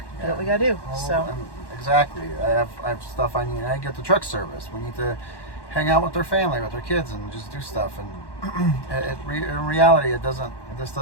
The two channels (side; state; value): right; late; 1.1 ms